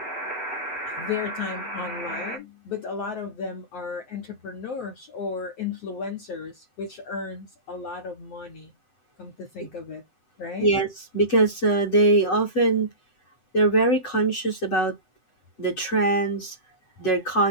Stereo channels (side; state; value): right; late; 7.9 ms